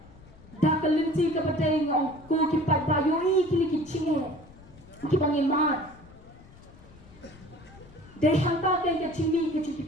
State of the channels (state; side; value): noise; left; rumble, 22 dB below the sound